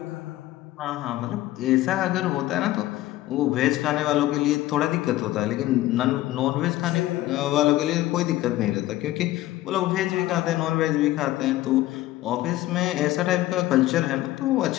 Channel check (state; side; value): quieter; right; 15.8 dB